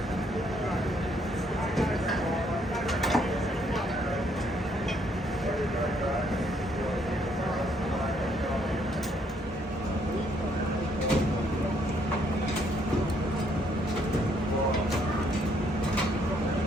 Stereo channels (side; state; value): both; normal; correlation 0.69